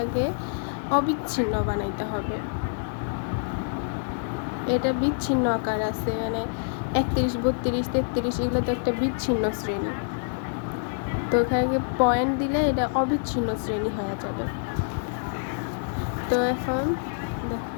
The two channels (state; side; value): silent; right; digital silence